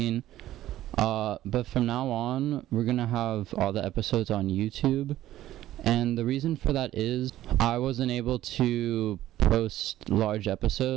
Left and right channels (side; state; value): left; quieter; 13.9 dB